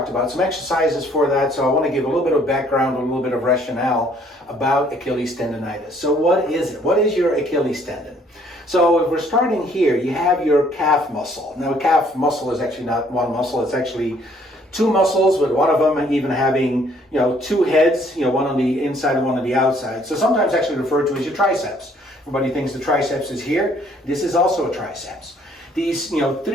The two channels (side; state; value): both; normal; correlation 0.62